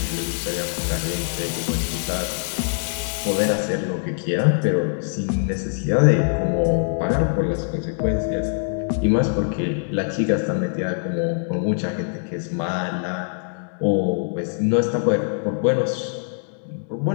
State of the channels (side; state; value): right; silent; digital silence